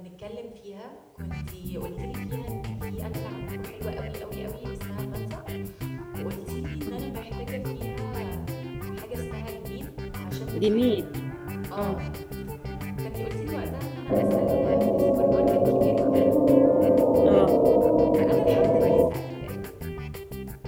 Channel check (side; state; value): both; identical; correlation 1.00